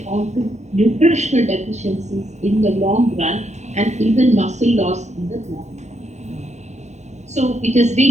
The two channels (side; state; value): left; late; 0.33 ms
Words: on to nutritional deficiencies in the long run and even muscle loss in the long run. So it has